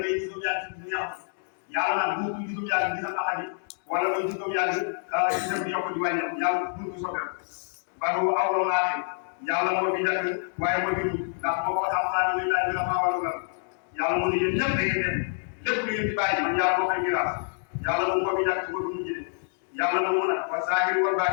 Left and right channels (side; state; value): right; silent; 60 dB below the other